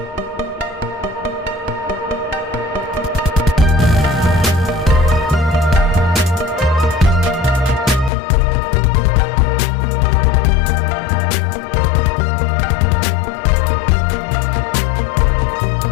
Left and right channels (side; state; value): right; drops out; at 8.1 s